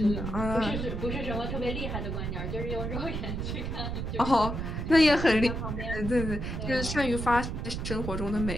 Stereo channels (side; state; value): right; noise; rumble, 4 dB below the sound